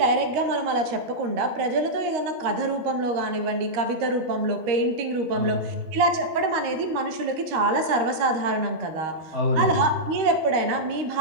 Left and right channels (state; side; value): late; left; 13 ms